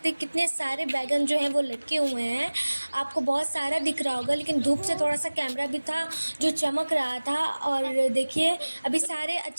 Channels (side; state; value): both; inverted; correlation -1.00